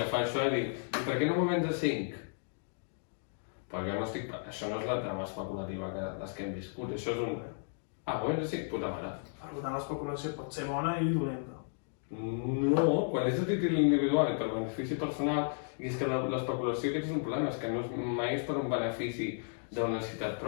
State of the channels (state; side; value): silent; right; digital silence